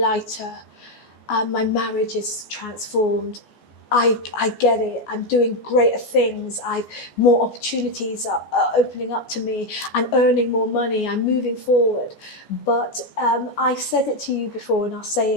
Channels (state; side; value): late; right; 14 ms